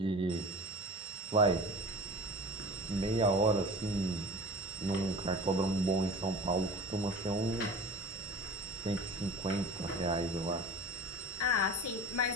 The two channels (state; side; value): normal; both; correlation 0.38